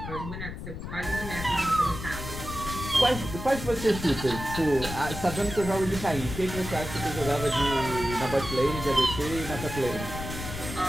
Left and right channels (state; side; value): noise; left; rumble, 8 dB below the sound